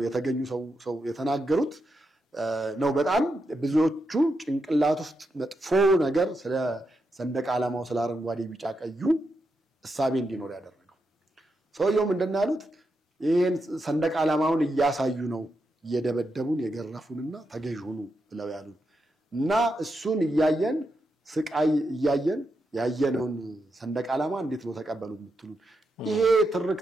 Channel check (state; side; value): normal; both; correlation 0.85